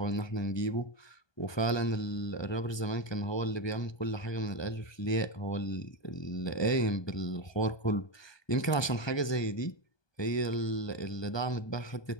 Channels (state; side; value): late; right; 1.2 ms